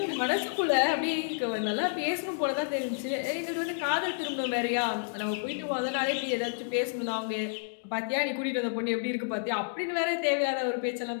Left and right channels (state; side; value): silent; right; digital silence